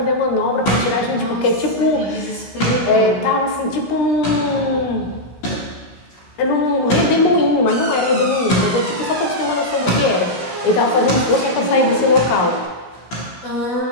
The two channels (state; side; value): late; right; 16 ms